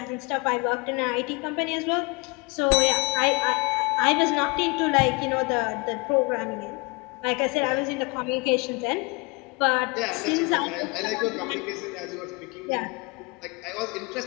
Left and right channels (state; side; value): quieter; right; 28.5 dB